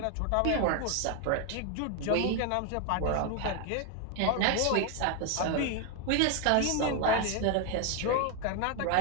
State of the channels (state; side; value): different; both; correlation 0.01